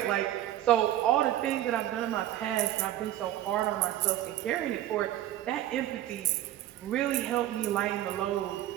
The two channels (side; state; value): left; quieter; 13.2 dB